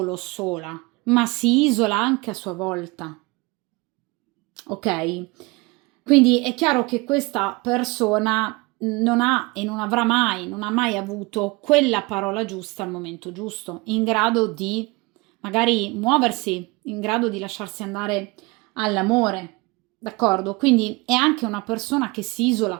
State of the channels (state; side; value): quieter; left; 24.9 dB